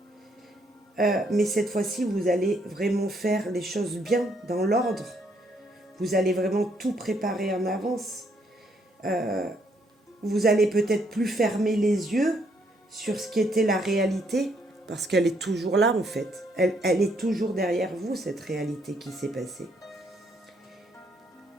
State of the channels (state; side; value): normal; both; correlation 0.71